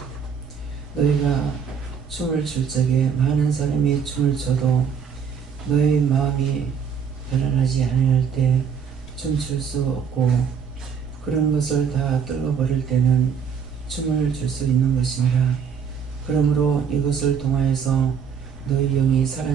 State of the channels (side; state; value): left; quieter; 7.0 dB